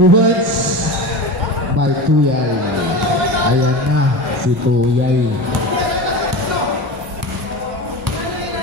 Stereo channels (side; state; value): both; normal; correlation 0.28